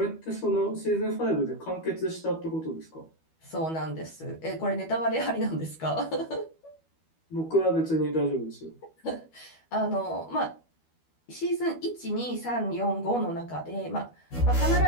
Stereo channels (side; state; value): right; late; 12 ms